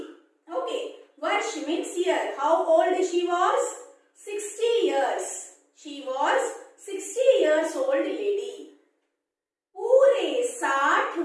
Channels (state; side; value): identical; both; correlation 1.00